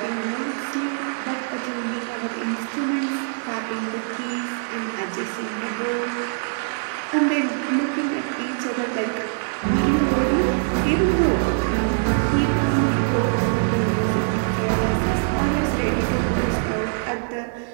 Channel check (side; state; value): left; silent; digital silence